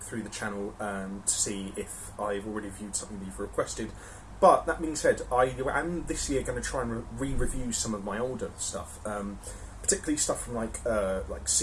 through the channel to see if I've already viewed something you've requested. But that being said, I am this year going to try and re-review some of my older stuff. Particularly stuff from like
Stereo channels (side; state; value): both; identical; correlation 1.00